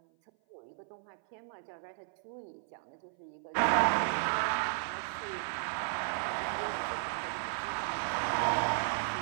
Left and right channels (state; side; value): silent; left; 55 dB below the other